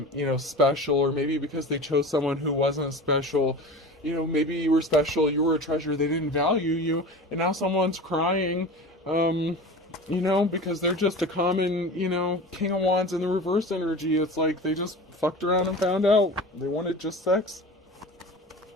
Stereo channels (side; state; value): both; normal; correlation 0.34